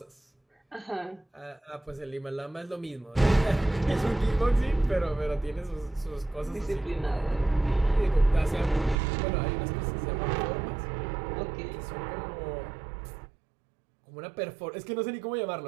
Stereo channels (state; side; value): drops out; left; at 9.0 s